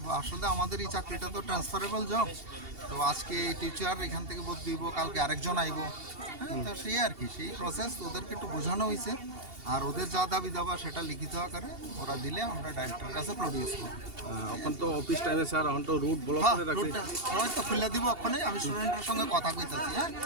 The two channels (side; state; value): left; late; 2.7 ms